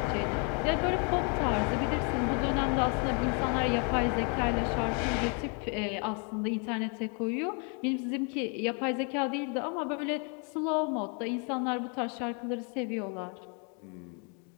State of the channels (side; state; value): right; quieter; 37.1 dB